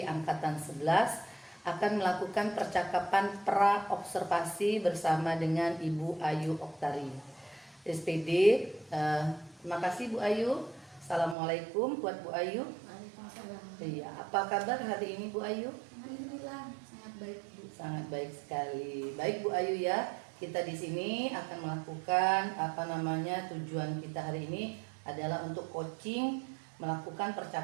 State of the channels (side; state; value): left; drops out; at 11.4 s